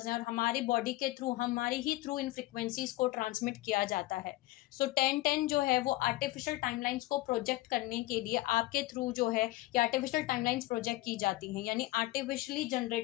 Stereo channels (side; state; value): right; quieter; 18.5 dB